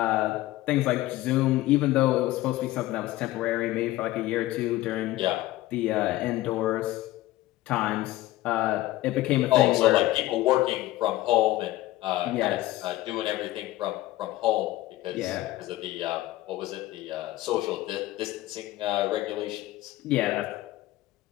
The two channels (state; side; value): quieter; right; 16.7 dB